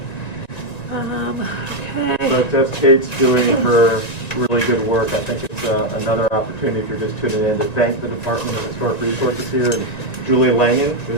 So that's Kate's doing her really good work. I think it's another opportunity, if you're just tuning in, to thank the Department of Historic Resources here, and Julie Langen,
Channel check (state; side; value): late; right; 1.9 ms